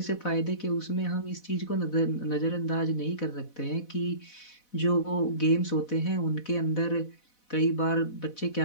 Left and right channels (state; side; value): late; right; 4.1 ms